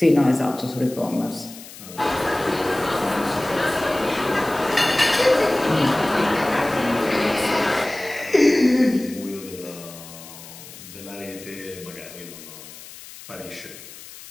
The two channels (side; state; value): left; noise; hiss, 16 dB below the sound